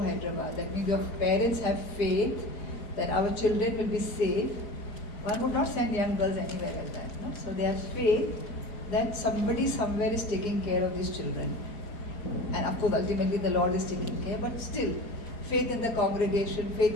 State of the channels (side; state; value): right; late; 4.9 ms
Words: Hyderabad. That means your parents have faith that our children will be safe. One would not send young girls anywhere like that. No? So they have faith that somebody somewhere is taking care of these children. And of course ultimately the Lord is taking care, but still faith in the congregation, faith